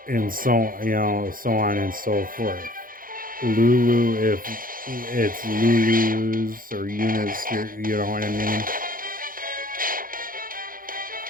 so, so on and so forth. Lulu, if it's Lulu's or Yuna's, you know what I mean?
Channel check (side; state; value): left; late; 0.41 ms